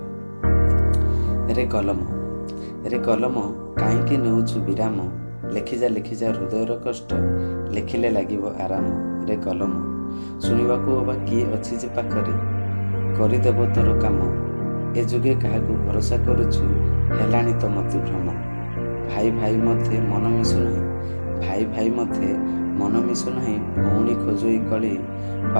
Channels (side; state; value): both; inverted; correlation -1.00